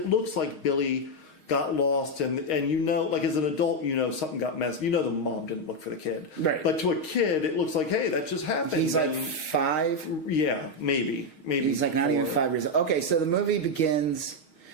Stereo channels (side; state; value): right; late; 6.4 ms